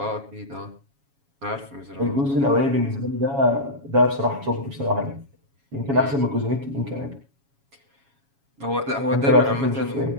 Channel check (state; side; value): late; left; 7.2 ms